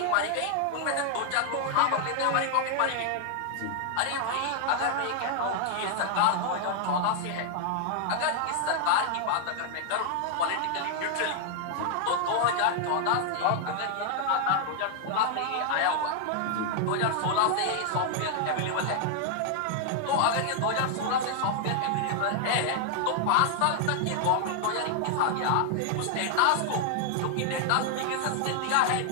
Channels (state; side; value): different; both; correlation 0.00